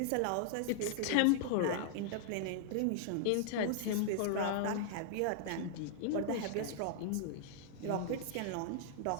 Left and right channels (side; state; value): both; different; correlation -0.01